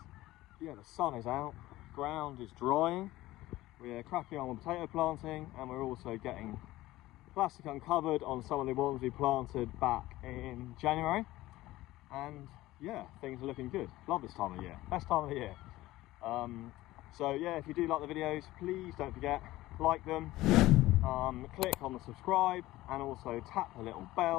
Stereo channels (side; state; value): right; quieter; 17.1 dB